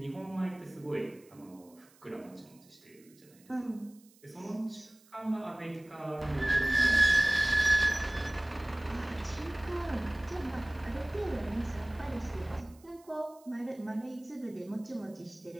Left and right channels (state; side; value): noise; right; hiss, 28 dB below the sound